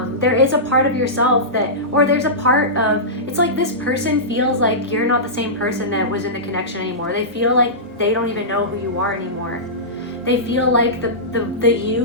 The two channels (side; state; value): both; normal; correlation -0.17